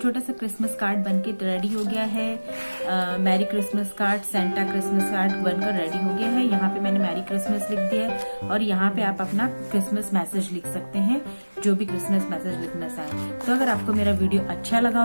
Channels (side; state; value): both; inverted; correlation -1.00